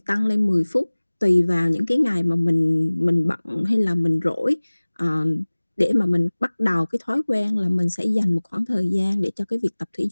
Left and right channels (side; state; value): both; inverted; correlation -1.00